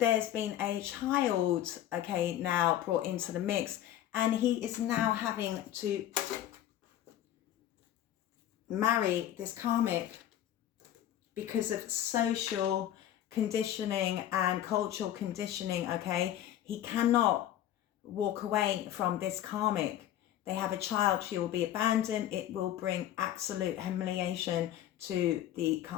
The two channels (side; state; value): right; quieter; 12.0 dB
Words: been a child, okay, now brought into the mix, and he is now having to marry this karmic because of social conditioning and cultural conditioning, okay. He cannot walk away from this karmic. They have a child, she will be abandoned. It will bring absolute humiliation to the